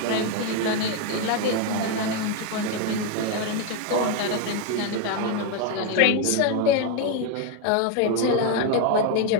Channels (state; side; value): different; both; correlation 0.01